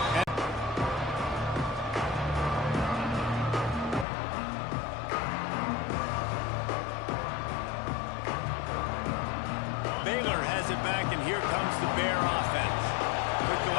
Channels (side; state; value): right; drops out; at 4.0 s